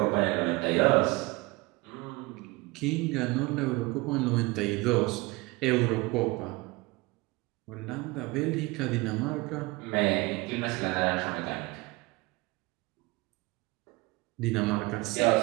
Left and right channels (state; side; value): quieter; left; 23.4 dB